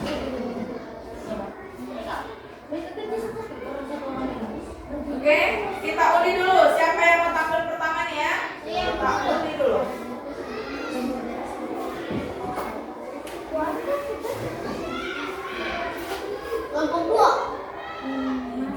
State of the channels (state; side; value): identical; both; correlation 1.00